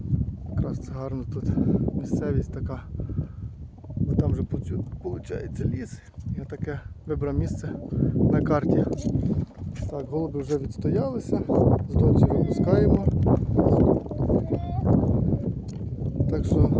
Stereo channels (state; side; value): identical; both; correlation 1.00